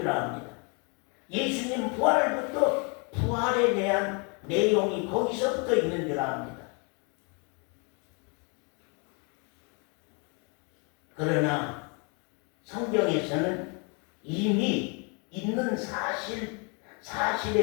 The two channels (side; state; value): right; quieter; 34.6 dB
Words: 압니다. 예수님 부활부터 부활에 대한 내용이 거기서부터 있는 줄 압니다. 그러나 성경에서는 이미 있는